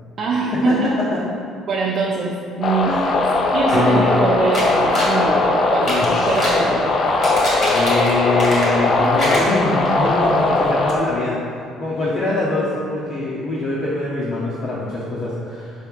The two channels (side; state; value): both; normal; correlation 0.66